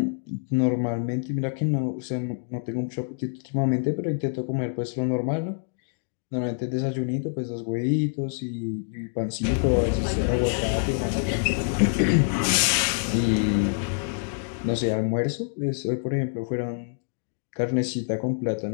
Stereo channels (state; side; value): silent; right; digital silence